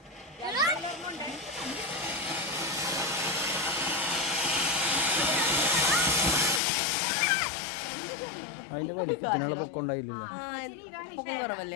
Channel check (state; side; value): drops out; right; at 6.6 s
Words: അതിന്റെ വലിപ്പത്തിനുള്ള പൊക്കം ഉണ്ടായില്ലല്ലോ. പൊക്കം